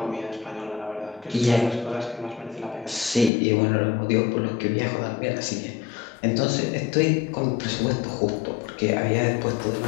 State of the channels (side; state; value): right; drops out; at 3.3 s